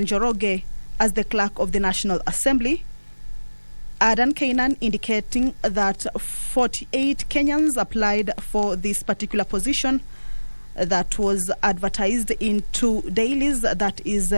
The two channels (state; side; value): inverted; both; correlation -1.00